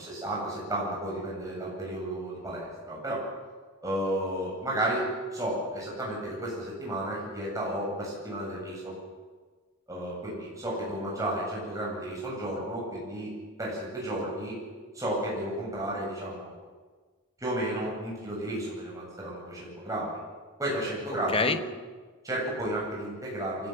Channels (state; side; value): normal; both; correlation 0.23